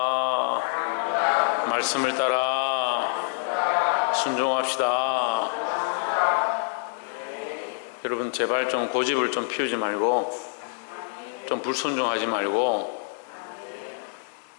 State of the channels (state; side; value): silent; right; digital silence